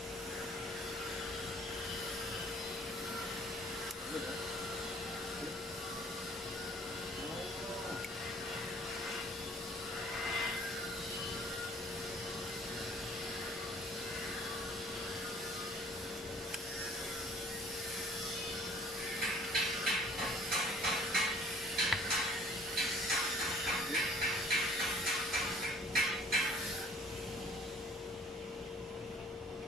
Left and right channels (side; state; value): both; normal; correlation 0.54